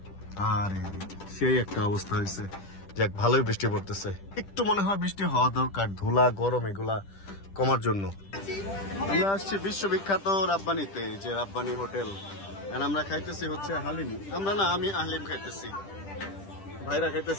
আর সেই একটা অবস্থা হয়েছে। যাক, ভালোই বৃষ্টি পড়তেছে। একটু মনে হয় বৃষ্টি হওয়া দরকার, ধুলা গরম এগুলা কমার জন্য। আমরা আসছি বিশ্ববিখ্যাত রাব্বানিতে, যে রাব্বানি হোটেল। আমরা খাইতেছি হচ্ছে হালিম। আমি হালিম খাইতেছি, ভাইরা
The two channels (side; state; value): right; late; 10 ms